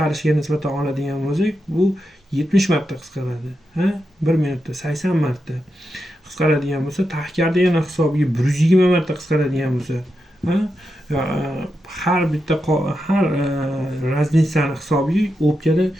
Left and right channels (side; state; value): both; normal; correlation 0.87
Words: nisbatan oladigan bo'lsak, bu 70 marta qisqaradi. 1 minutda 80 marta qisqaradigan bo'lsa, tahkardagina hisobiga 120 marta qisqaradigan bo'lsa, har bitta har razницаni hisobiga o'pkada